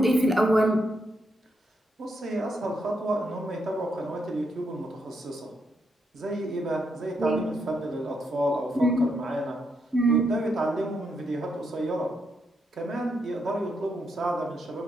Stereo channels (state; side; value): normal; both; correlation 0.80